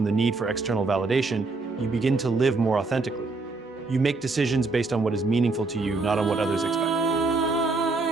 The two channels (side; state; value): left; quieter; 3.7 dB